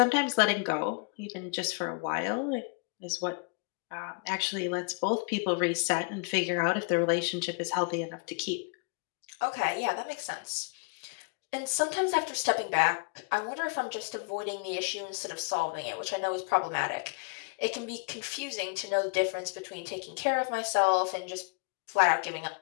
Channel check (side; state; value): right; quieter; 34.0 dB